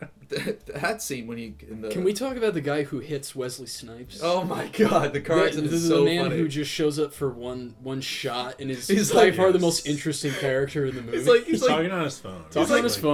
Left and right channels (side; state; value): both; identical; correlation 1.00